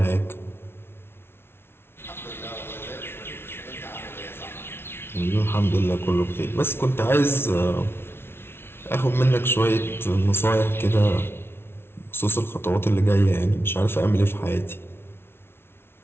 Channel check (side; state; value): right; late; 0.12 ms